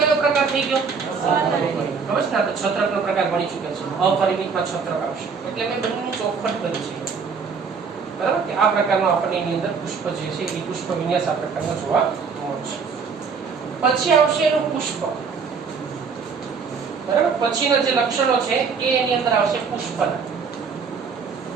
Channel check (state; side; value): quieter; left; 5.5 dB